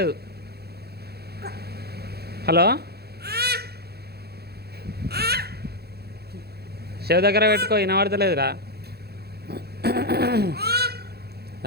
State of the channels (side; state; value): left; late; 0.46 ms